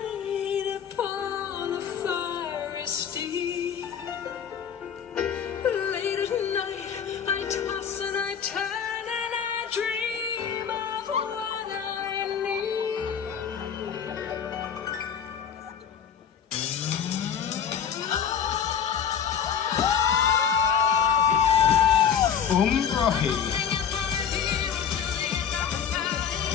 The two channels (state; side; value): quieter; right; 7.9 dB